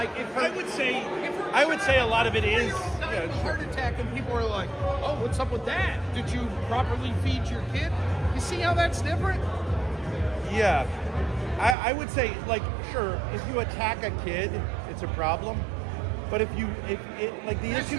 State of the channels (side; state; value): left; drops out; at 11.8 s